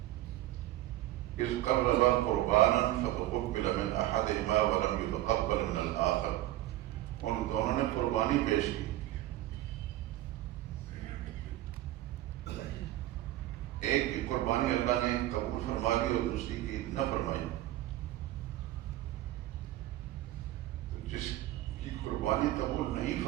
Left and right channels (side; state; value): left; quieter; 15.3 dB